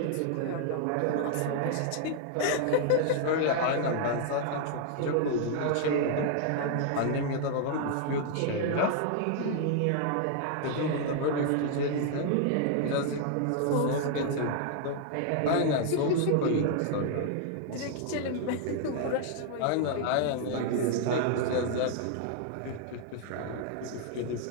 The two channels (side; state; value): both; different; correlation 0.00